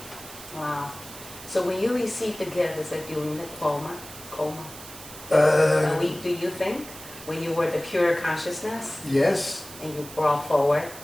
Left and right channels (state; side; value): noise; right; hiss, 15 dB below the sound